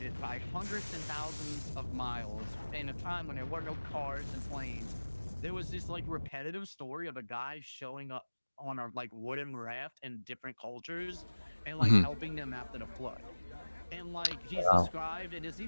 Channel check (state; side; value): inverted; both; correlation -1.00